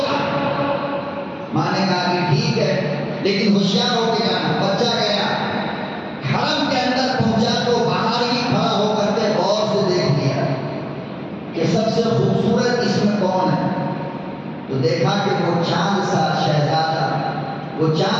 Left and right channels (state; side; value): identical; both; correlation 1.00